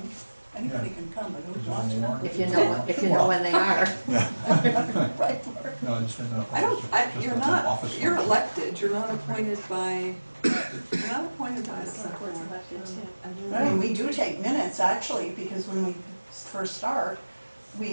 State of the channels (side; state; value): both; inverted; correlation -1.00